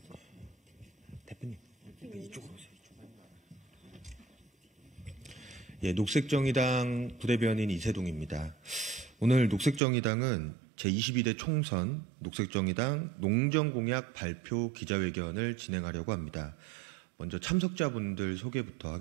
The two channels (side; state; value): left; drops out; at 9.8 s